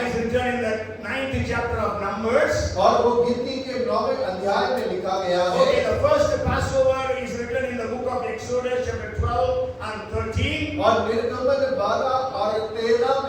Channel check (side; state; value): both; identical; correlation 1.00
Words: is written in the 9th chapter of Numbers. और वो गिनती के 9वें अध्याय में लिखा गया है। Okay, the first Passover is written in the book of Exodus chapter 12 and 13. और निर्गमन 12 और 13